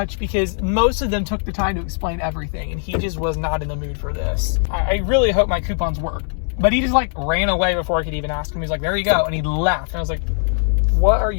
because most of them took the time to explain everything, and he just was not in the mood for this. I really hope my coupons worked. But he just like ran away before I could even ask him. He's like, there you go. And he left. And I was like, what are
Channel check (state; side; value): silent; right; digital silence